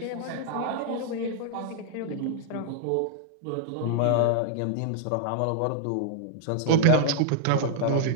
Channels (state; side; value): different; both; correlation -0.01